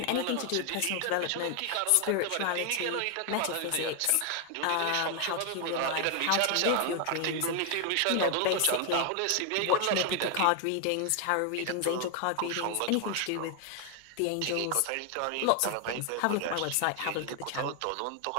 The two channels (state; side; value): different; both; correlation 0.00